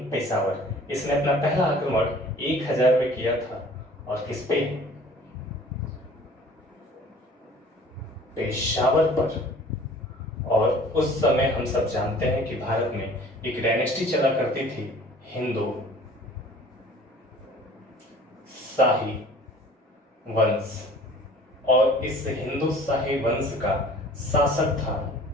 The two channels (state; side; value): normal; both; correlation 0.49